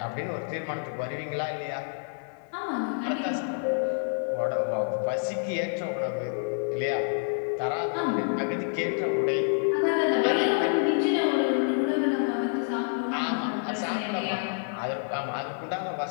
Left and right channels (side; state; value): right; silent; 59 dB below the other